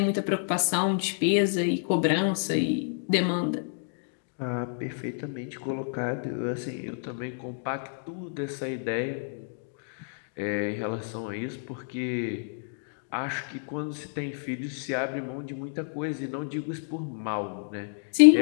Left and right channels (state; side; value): silent; right; digital silence